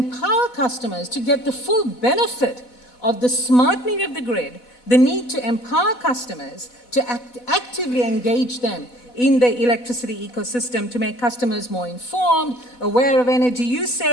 customers to get the full benefit of the smartening of the grid, the need to empower customers to actively engage them in the electricity ecosystem to make customers more informed, aware of energy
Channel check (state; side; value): late; right; 4.1 ms